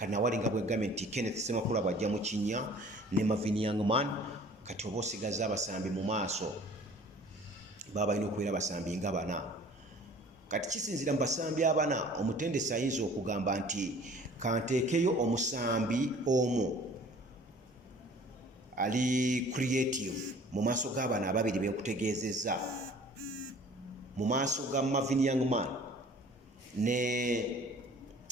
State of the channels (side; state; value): both; normal; correlation 0.50